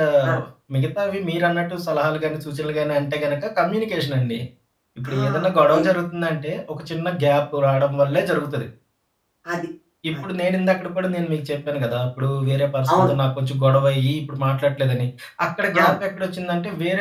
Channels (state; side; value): identical; both; correlation 1.00